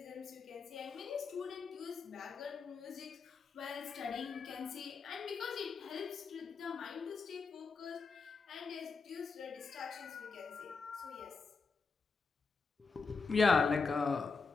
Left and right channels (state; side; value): quieter; right; 4.7 dB